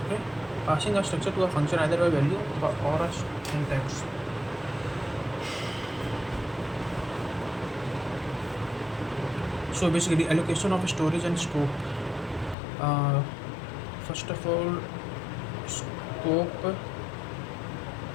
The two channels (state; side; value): drops out; right; at 12.6 s